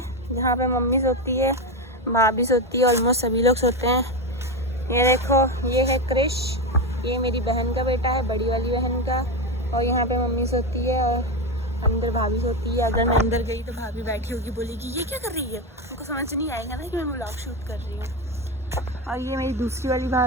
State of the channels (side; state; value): both; normal; correlation 0.14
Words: जहाँ पे मम्मी सोती है, भाभी सोती है, ऑलमोस्ट सभी लोग सोते हैं। ये देखो ये है क्रिश, ये मेरी बहन का बेटा है, बड़ी वाली बहन का। और यहाँ पे मम्मी सोती है और अंदर भाभी सोती है। अगर मैं अंदर गई तो भाभी बैठी होगी, बोलेगी ये क्या कर रही है, उनको समझ नहीं आएगा ना कि मैं व्लॉग शूट कर रही हूँ। और ये मेरी दूसरी वाली